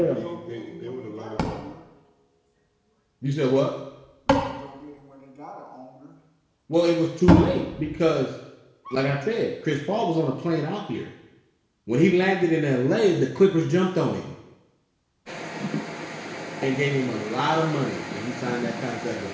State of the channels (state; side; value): identical; both; correlation 1.00